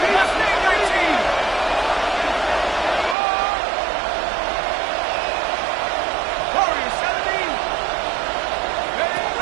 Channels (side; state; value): left; drops out; at 3.2 s